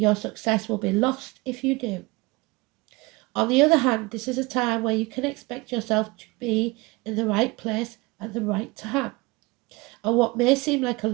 success will be lost if you do. On the other hand, this is a time where you can expect yourself to be in the right place at the right time. And what may seem like a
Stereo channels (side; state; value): left; quieter; 24.0 dB